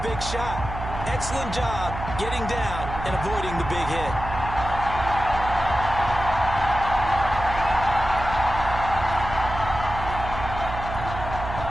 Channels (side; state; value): right; noise; hum, 8 dB below the sound